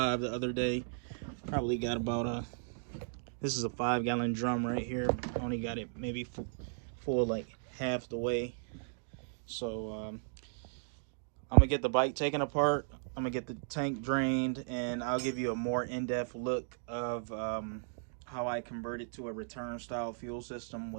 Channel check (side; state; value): left; silent; digital silence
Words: the other day. Probably got about this is a 5-gallon drum right here. Only got it maybe full like half the way. So I'm gonna get the bike taken apart. I'm gonna get the tank drained, and I'll give you a more in-depth look of how I converted to a return style fuel system